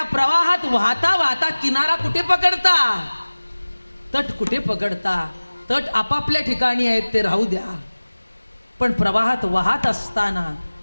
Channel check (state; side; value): inverted; both; correlation -1.00